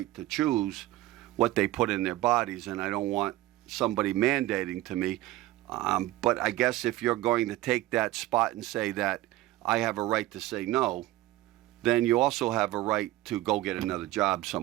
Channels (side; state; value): left; quieter; 16.4 dB